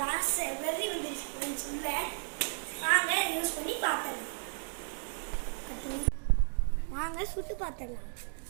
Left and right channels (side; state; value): left; silent; digital silence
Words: ஆசை வெறி வந்துருச்சு ஃப்ரெண்ட்ஸ். இல்லை வாங்க யூஸ் பண்ணி பார்த்துடலாம். வாங்க சுட்டு பார்த்துடலாம்.